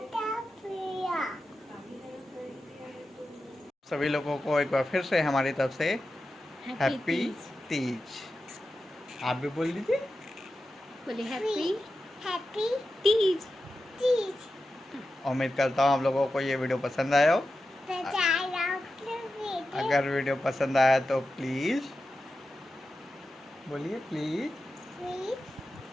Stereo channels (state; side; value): normal; both; correlation 0.92